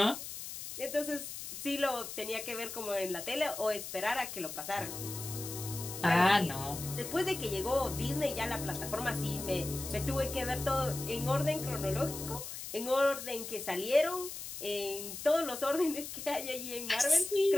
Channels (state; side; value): noise; left; hiss, 8 dB below the sound